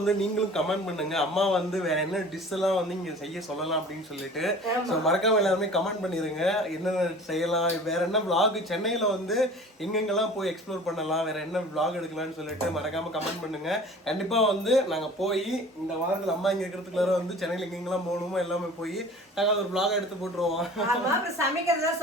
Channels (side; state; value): both; normal; correlation 0.43